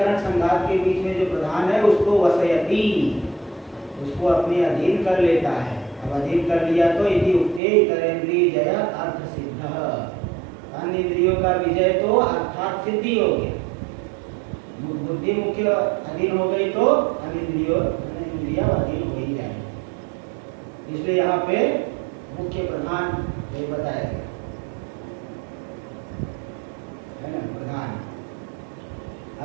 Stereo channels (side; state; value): left; drops out; at 7.6 s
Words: संघात के बीच में जो प्रधान है उसको वसयति, उसको अपने अधीन कर लेता है। अब अधीन कर लिया तो यदि उक्ते इतरेंद्रिय जय अर्थ सिद्ध, अन्य इंद्रियों का विजय तो अर्थात सिद्धि हो गया। बुद्धि मुख्य अधीन हो गई तो अन्य इंद्रिया अधीन हो ही जाएगी। इसलिए यहाँ पे मुख्य प्रधान ये बताया गया है ना, प्रधान